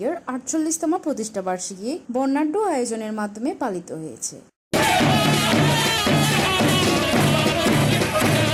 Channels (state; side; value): identical; both; correlation 1.00